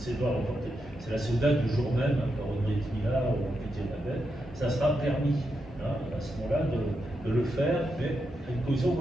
pas reporté. C'est la Seouda du jour même, par une Brit Mila ou appliquée la veille, ça sera permis à ce moment-là de le faire, mais à une condition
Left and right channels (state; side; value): normal; both; correlation 0.85